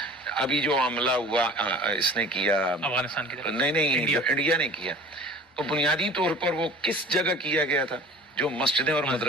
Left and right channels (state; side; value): normal; both; correlation 0.43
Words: अभी जो हमला हुआ इसने किया अफगानिस्तान की तरफ। नहीं इंडिया ने किया, तो बुनियादी तौर पर वो किस जगह किया गया था? जो मस्जिदें और